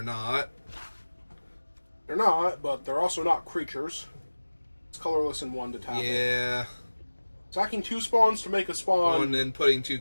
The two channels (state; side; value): inverted; both; correlation -1.00